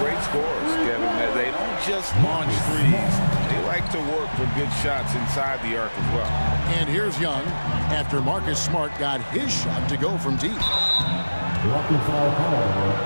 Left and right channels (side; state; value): both; inverted; correlation -1.00